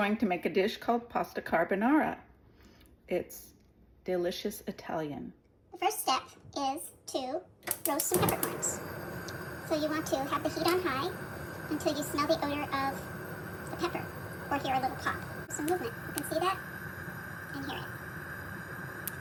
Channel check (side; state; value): both; identical; correlation 1.00